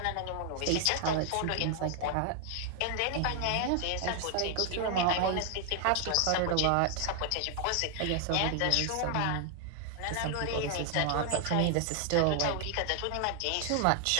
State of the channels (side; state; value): both; different; correlation 0.00